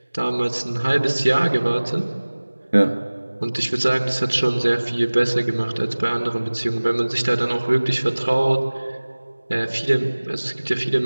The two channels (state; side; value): inverted; both; correlation -1.00